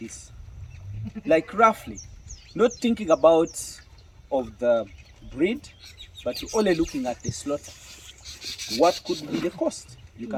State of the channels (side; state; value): both; identical; correlation 1.00